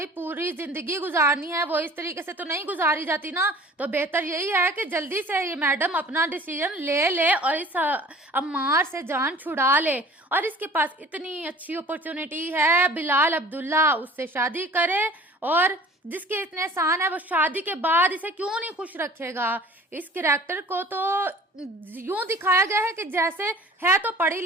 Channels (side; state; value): both; normal; correlation 0.46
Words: पूरी जिंदगी गुजारनी है, वो इस तरीके से तो नहीं गुजारी जाती ना। तो बेहतर यही है कि जल्दी से ये मैडम अपना डिसीजन ले ले और इस अम्मार से जान छुड़ा ले, और इसके पास इतनी अच्छी अपॉर्चुनिटी है, बिलाल अब्दुल्ला उससे शादी करे, और जिसके इतने एहसान है वो शादी के बाद इसे क्यों नहीं खुश रखेगा। इस कैरेक्टर को तो यूं दिखाया गया है कि जैसे है तो पढ़ी